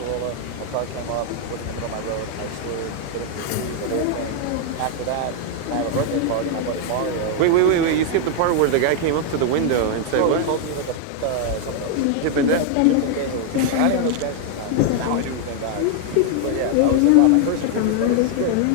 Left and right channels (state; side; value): different; both; correlation 0.00